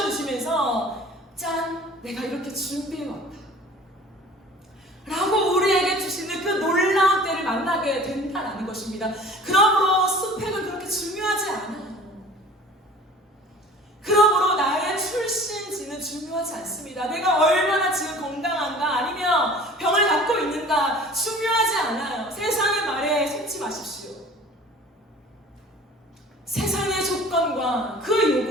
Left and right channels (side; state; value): both; normal; correlation 0.46